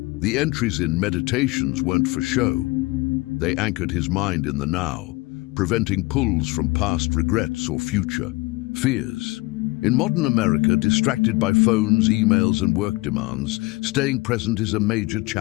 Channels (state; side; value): quieter; right; 23.1 dB